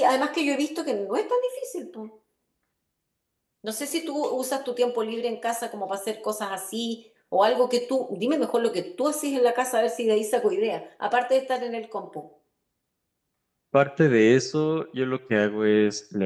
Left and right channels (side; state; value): both; identical; correlation 1.00